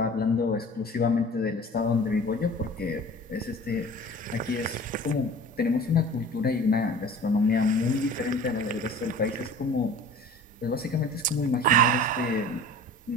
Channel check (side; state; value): both; normal; correlation 0.42